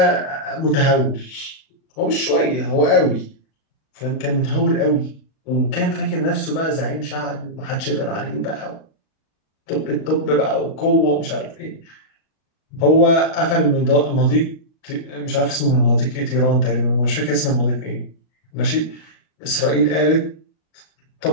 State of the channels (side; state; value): right; late; 39 ms